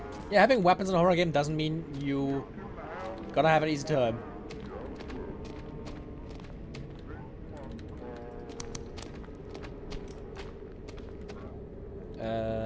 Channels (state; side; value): identical; both; correlation 1.00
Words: Yeah, having weapons in a horror game doesn't mean you gonna have an easy time.